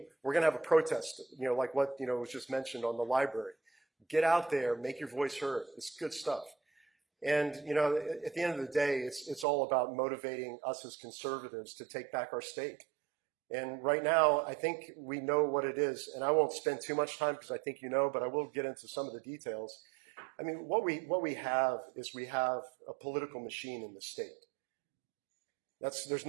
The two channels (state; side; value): drops out; left; at 9.5 s